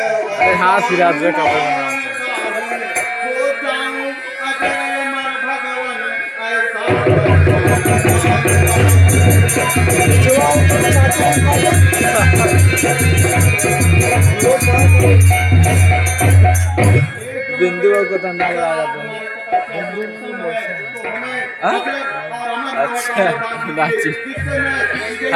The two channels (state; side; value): identical; both; correlation 1.00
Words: अरे हाँ सिराज का बिंदु को धंधा लगा अच्छा नाची